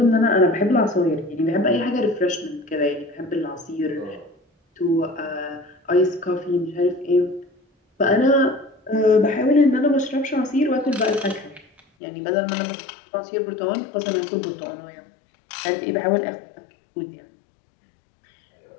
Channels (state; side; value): drops out; right; at 11.8 s